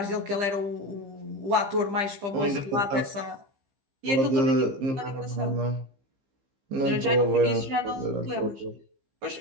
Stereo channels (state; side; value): late; left; 15 ms